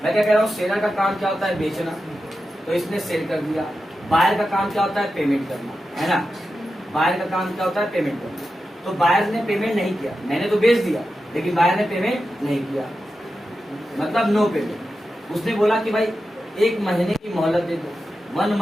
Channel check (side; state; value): both; normal; correlation 0.91